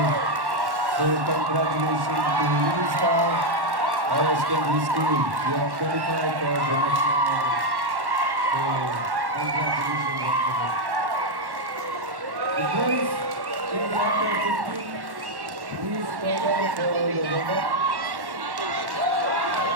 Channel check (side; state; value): left; late; 1.1 ms